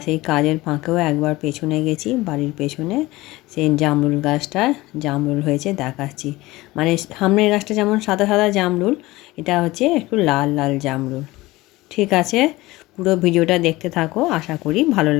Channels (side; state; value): right; quieter; 19.6 dB